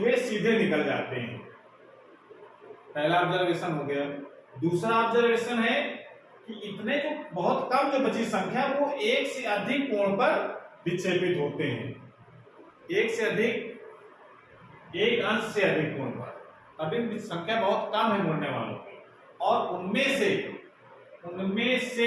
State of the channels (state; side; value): identical; both; correlation 1.00